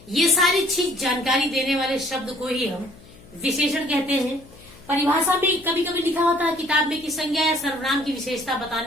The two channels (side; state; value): left; noise; hum, 23 dB below the sound